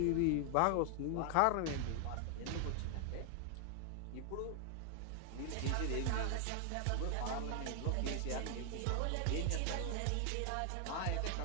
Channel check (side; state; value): both; different; correlation 0.00